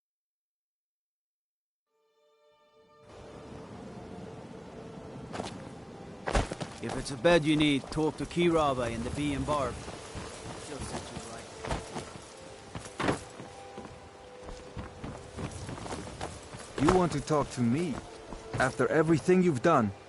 If it's a bed you need, talk to Kiraba in the Bee and Barb. She'll set you right. You want to talk to me? After everything you've done.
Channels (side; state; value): both; identical; correlation 1.00